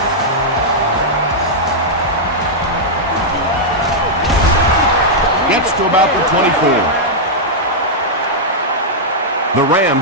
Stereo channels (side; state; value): both; normal; correlation -0.06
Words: Gets to about the 24. The